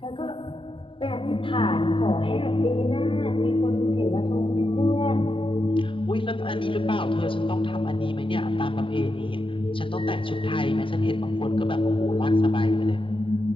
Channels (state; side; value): late; right; 0.25 ms